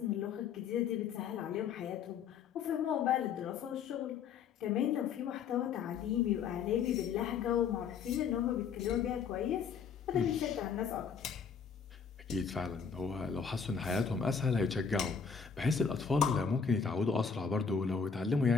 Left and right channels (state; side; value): quieter; right; 6.3 dB